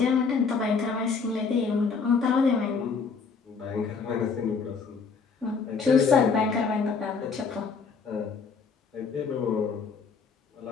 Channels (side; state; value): right; quieter; 5.2 dB